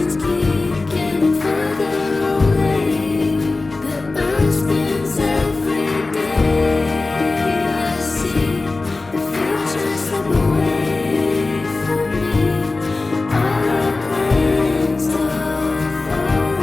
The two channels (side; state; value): right; quieter; 3.5 dB